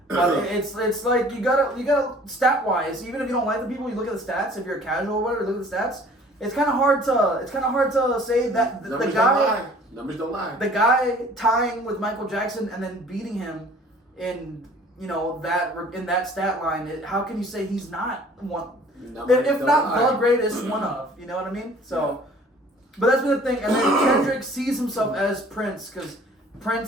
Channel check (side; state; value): both; normal; correlation 0.52